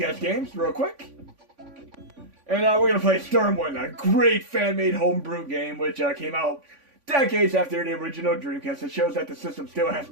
games real quick. And we're going to play Xtreme, a great fan-made homebrew game which came out decades after the original Dreamcast. It shows that the system still has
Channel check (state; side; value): late; left; 3.5 ms